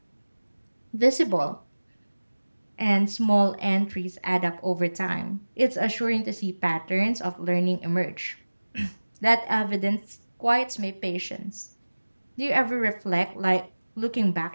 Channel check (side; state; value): both; inverted; correlation -1.00